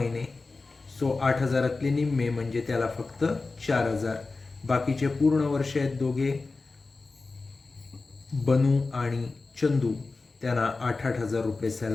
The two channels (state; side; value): quieter; right; 3.8 dB